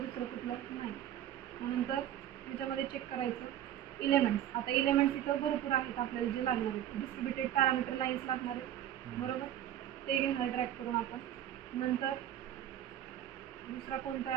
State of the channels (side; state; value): left; quieter; 11.4 dB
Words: कुठलं, नाही. नंतर ह्याच्यामध्ये चेक करायचं इलेमेंट्स. आता इलेमेंट्स इथं भरपूर आहेत आपल्याला जे लागणार आहेत. डिस्ट्रीब्युटेड पॅरामीटर लाईन्स लागणार आहेत, बरोबर, ते घेणार ड्रॅग करून आपण. नंतर दुसरा कोणता